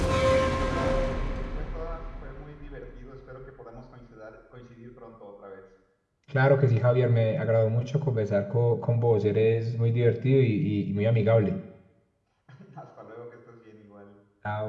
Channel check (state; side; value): identical; both; correlation 1.00